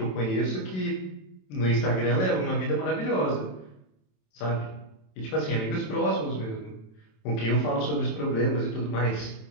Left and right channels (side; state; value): right; late; 27 ms